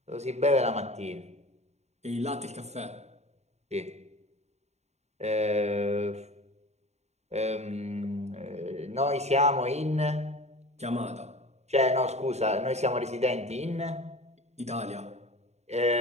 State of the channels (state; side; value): late; left; 0.32 ms